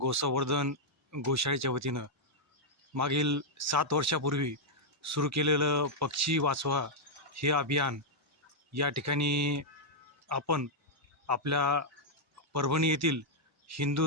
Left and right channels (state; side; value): normal; both; correlation -0.04